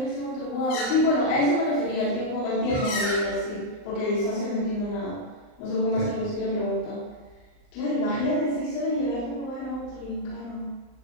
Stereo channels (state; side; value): late; right; 39 ms